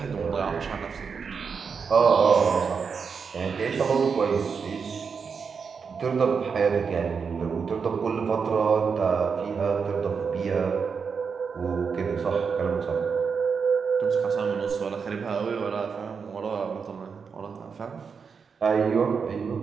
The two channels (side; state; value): left; quieter; 5.8 dB